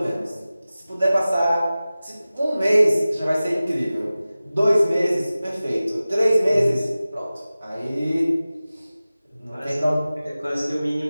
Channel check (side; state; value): both; inverted; correlation -0.96